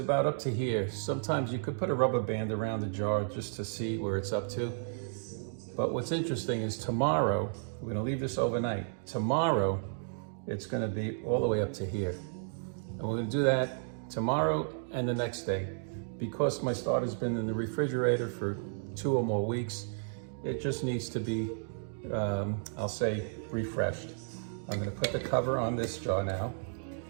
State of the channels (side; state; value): left; silent; digital silence